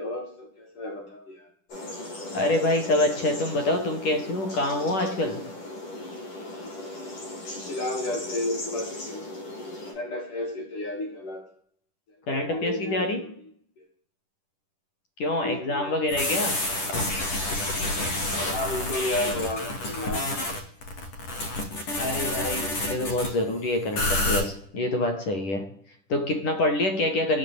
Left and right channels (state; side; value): late; right; 10 ms